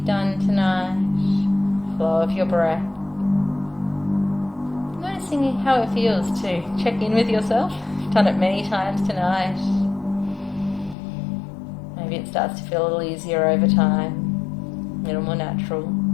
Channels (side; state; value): right; drops out; at 11.0 s